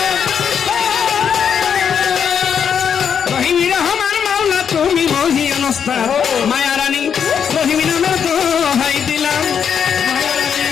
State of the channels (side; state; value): right; quieter; 7.6 dB